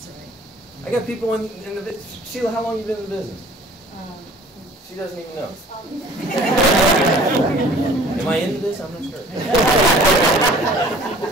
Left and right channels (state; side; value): normal; both; correlation 0.50